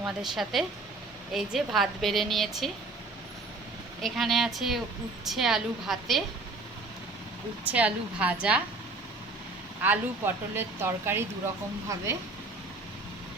সাথে। এই যে ভাত বেড়ে নিয়েছি, এখানে আছে উচ্ছে আলু ভাতে, উচ্ছে আলু ভাজা, আলু পটলের তরকারি দুরকমভাবে,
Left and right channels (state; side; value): quieter; left; 3.3 dB